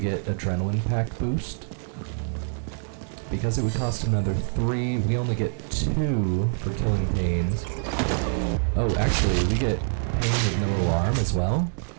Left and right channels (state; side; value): silent; left; 61 dB below the other